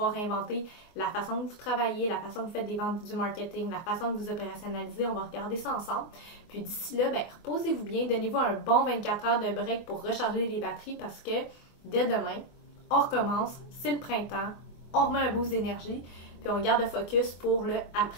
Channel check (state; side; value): late; right; 24 ms